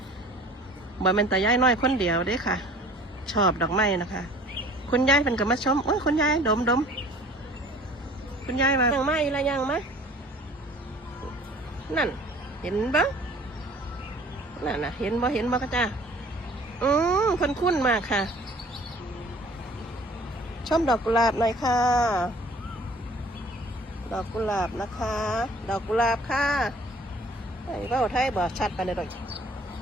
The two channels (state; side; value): normal; both; correlation 0.50